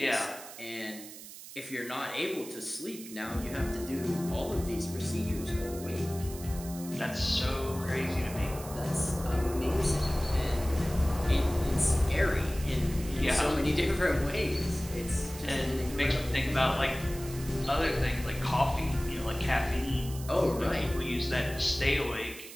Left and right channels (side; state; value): right; noise; hiss, 14 dB below the sound